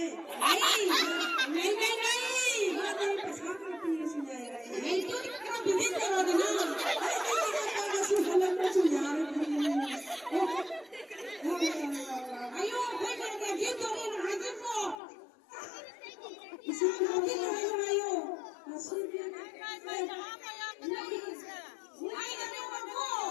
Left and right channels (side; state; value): right; drops out; at 15.0 s